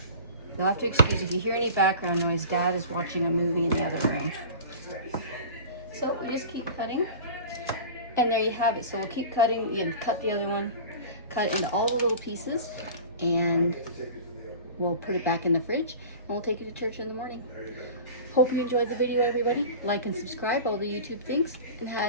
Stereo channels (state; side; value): inverted; both; correlation -0.36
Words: You'll have to excuse if you hear any background noise. Dad is watching a movie in the other room. So we just keep cutting. And there you have it. So we'll keep cutting. You cut the other one. Cut it into all the little pieces. And we'll put it back in the fridge. And we'll take it to church in the morning. Hope you enjoyed the video, everybody. Like and subscribe, all the YouTube things.